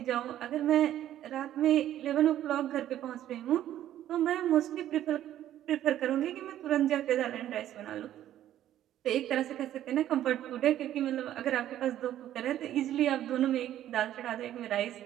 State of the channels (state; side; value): quieter; left; 12.1 dB